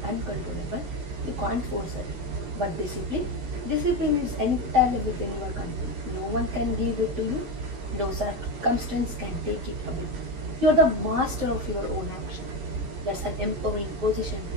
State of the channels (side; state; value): left; late; 10 ms